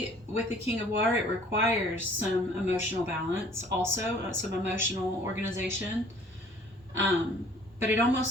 with the King of Water, it requires some emotional balance, also some emotional organization. But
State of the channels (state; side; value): normal; both; correlation 0.54